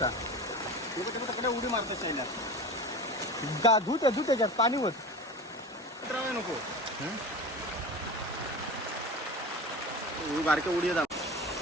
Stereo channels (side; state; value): both; normal; correlation 0.32